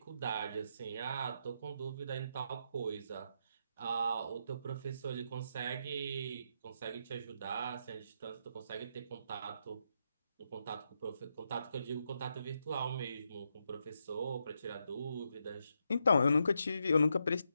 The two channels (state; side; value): inverted; both; correlation -0.81